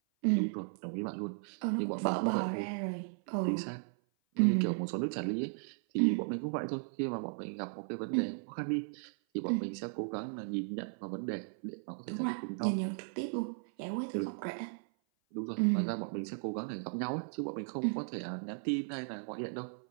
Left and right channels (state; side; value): silent; left; 54 dB below the other